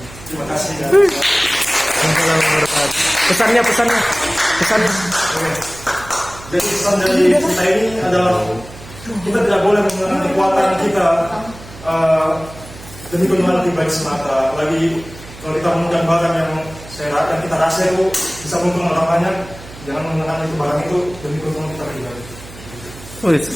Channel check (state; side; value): noise; right; hum, 17 dB below the sound